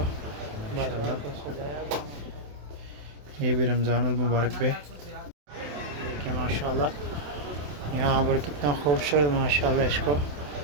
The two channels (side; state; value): left; late; 27 ms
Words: ये भी रमज़ानुल मुबारक पे देखिए माशाल्लाह। यहाँ पर कितना खूबसूरत माशाल्लाह इसको